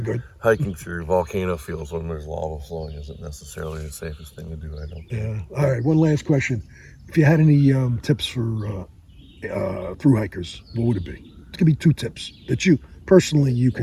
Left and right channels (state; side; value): identical; both; correlation 1.00